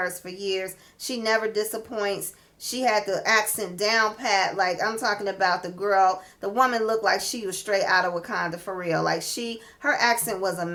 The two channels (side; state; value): both; identical; correlation 1.00